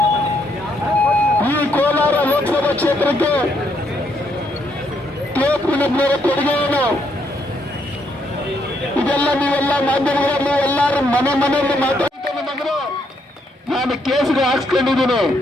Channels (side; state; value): both; normal; correlation 0.74